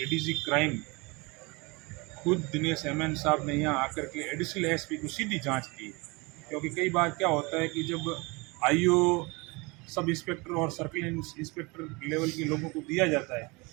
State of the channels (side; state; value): left; quieter; 26.4 dB